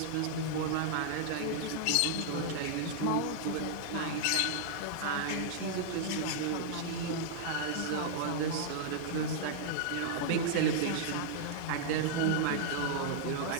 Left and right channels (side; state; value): both; different; correlation -0.01